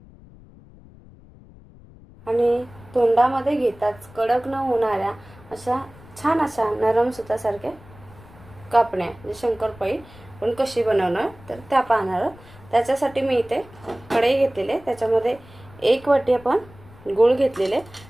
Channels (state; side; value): noise; left; rumble, 22 dB below the sound